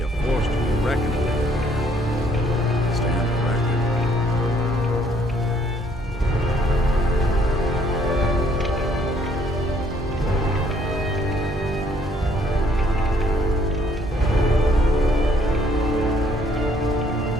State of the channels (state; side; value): normal; both; correlation 0.65